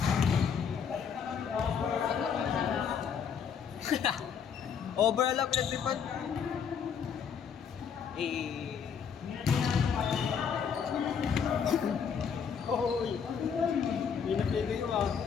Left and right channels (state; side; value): quieter; right; 7.1 dB